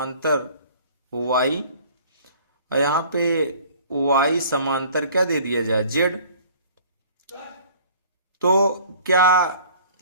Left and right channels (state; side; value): inverted; both; correlation -0.50